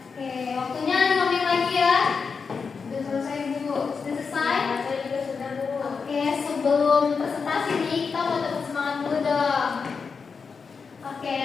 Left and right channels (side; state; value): right; quieter; 5.3 dB